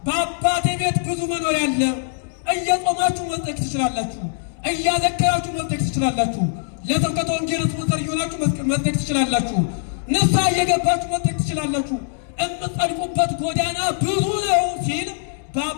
በአባቴ ቤት ብዙ መኖሪያ አለ። እየጾማችሁ መጽደቅ ትችላላችሁ። እያዘከራችሁ መጽደቅ ትችላላችሁ። ለስብከተ ወንጌል ስፖንሰር እየሆናችሁ መጽደቅ ትችላላችሁ። ንስሐ እየገባችሁ መጽደቅ ትችላላችሁ። የምትጸድቁበት ጎዳና ብዙ ነው ሲል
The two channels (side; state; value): right; silent; 64 dB below the other